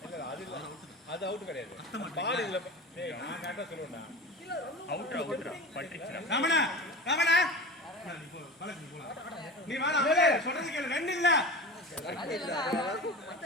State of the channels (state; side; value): normal; both; correlation 0.32